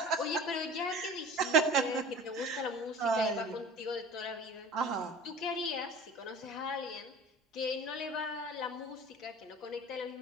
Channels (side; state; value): both; normal; correlation 0.39